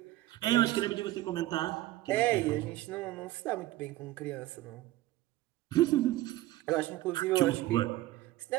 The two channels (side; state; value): left; quieter; 16.2 dB